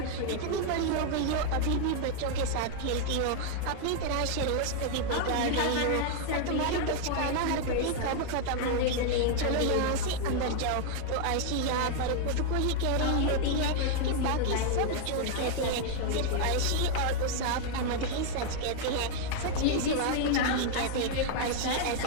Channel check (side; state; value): both; different; correlation 0.00